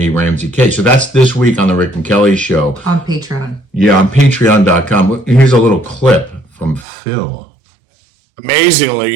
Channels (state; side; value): drops out; left; at 6.9 s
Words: Ramsey case. So that's this week on the Rick and Kelly Show. On Patreon. Yeah, on patreon.com. Here's a little clip from Phil.